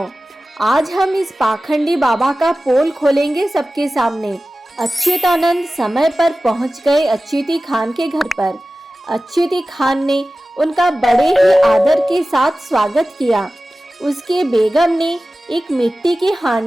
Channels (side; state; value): both; normal; correlation 0.96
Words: आज हम इस पाखंडी बाबा का पोल खोलेंगे सबके सामने। अच्युतानंद समय पर पहुंच गए अच्युती खान के घर पर। अच्युती खान ने उनका बड़े ही आदर के साथ स्वागत किया। उसके बेगम ने एक मिट्टी की